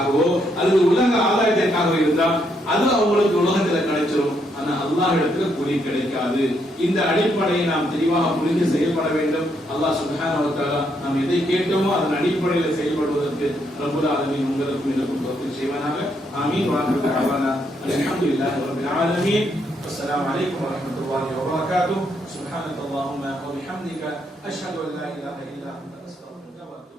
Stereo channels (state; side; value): normal; both; correlation 0.75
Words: அல்லது உலக ஆதாயத்திற்காகவோ இருந்தால் அது அவங்களுக்கு உலகத்துல கிடைச்சிடும். ஆனா அல்லாஹ் இடத்துல கூலி கிடைக்காது. இந்த அடிப்படையை நாம் தெளிவாக புரிந்து செயல்பட வேண்டும். அல்லாஹ் சுப்ஹானஹு வ தஆலா நாம் எதை கேட்டோமோ அதன் அடிப்படையில் செயல்படுவதற்கு ரப்புல் ஆலமீன் உங்களுக்கும் எனக்கும் தௌஃபீக் செய்வானாக. ஆமீன். வ ஆகிரு தஅவானா அல்ஹம்துலில்லாஹி ரப்பில் ஆலமீன். அஸ்ஸலாமு அலைக்கும் வ ரஹ்மத்துல்லாஹி வ பரகாத்துஹு. சுப்ஹானக அல்லாஹும்ம வ பிஹம்திக அஷ்ஹது அன் லா இலாஹா இல்லா அன்த அஸ்தக்ஃபிருக